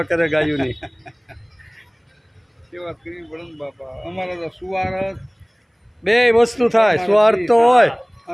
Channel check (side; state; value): both; identical; correlation 1.00